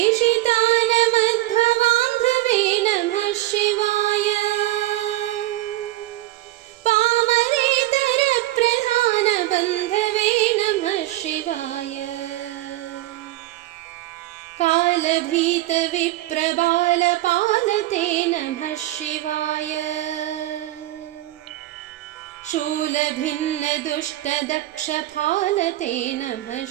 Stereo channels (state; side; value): quieter; left; 16.6 dB